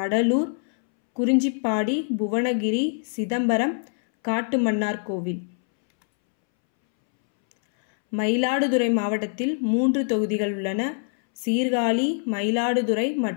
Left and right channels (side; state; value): right; silent; 63 dB below the other